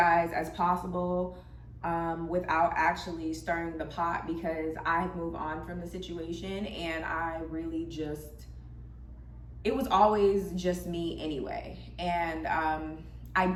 as possible without actually stirring the pot, because I moved on from the situation and I really just, it was always just me anyway. And I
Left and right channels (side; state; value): both; identical; correlation 1.00